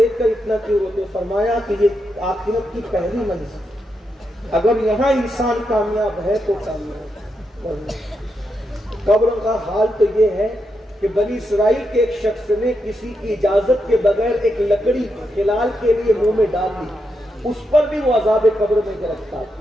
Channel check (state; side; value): normal; both; correlation 0.83